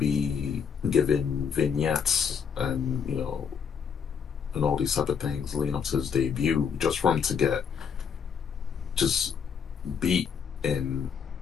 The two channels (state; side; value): quieter; right; 6.9 dB